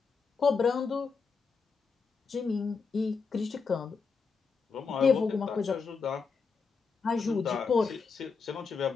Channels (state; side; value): quieter; right; 5.1 dB